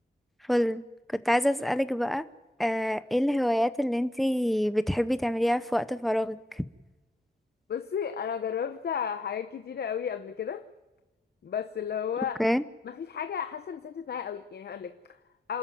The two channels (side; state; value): both; normal; correlation 0.80